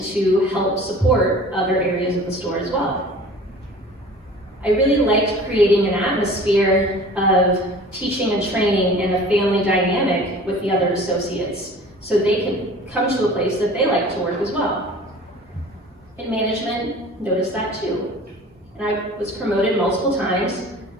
to help support other areas of the store as well. I really liked creating an atmosphere of teaching and training and a family dynamic with the other associates so they could come to a place that they like to work as well. And management noticed that too. And I was promoted multiple times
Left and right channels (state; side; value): normal; both; correlation 0.44